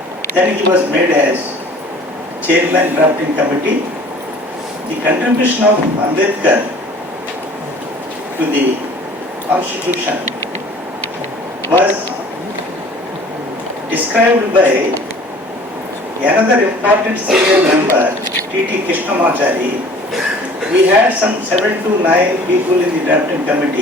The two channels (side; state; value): both; normal; correlation 0.49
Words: Then he was made as Chairman Drafting Committee. The contribution of Ambedkar to the Constitution was described by another important senior member, T.T. Krishnamachari. We had some 7 to 9 people in the drafting